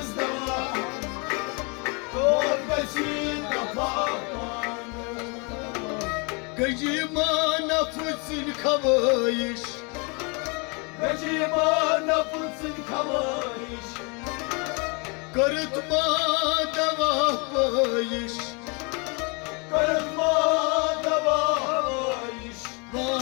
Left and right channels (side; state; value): right; quieter; 32.1 dB